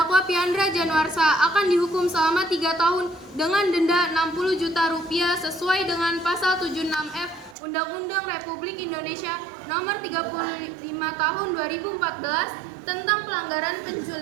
Piandra Januarsa akan dihukum selama 3 tahun dengan denda 60 juta rupiah sesuai dengan pasal 76F Undang-Undang Republik Indonesia Nomor 35 Tahun 2014 tentang pelanggaran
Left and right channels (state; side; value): drops out; left; at 7.6 s